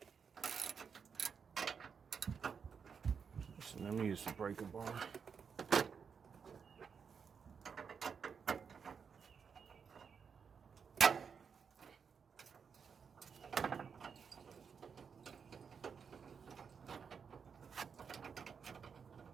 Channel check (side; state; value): left; quieter; 6.3 dB